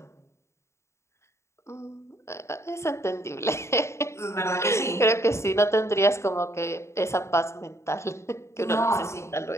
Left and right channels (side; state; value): right; late; 0.13 ms